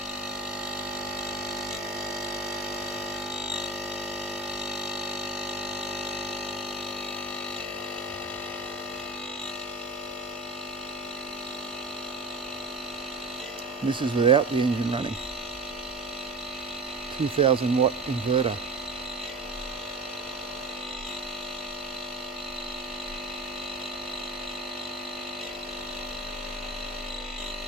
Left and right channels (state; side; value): quieter; left; 3.1 dB